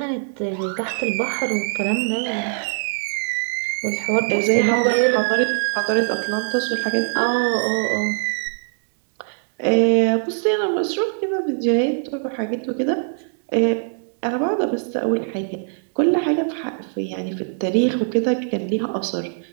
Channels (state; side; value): silent; left; digital silence